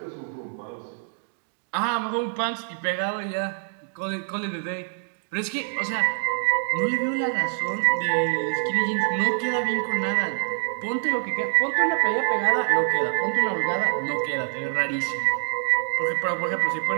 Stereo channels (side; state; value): left; silent; 61 dB below the other